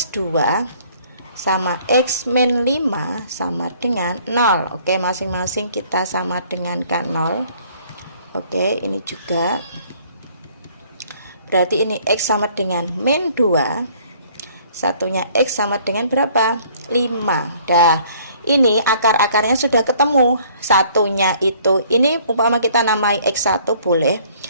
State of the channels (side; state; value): both; inverted; correlation -0.58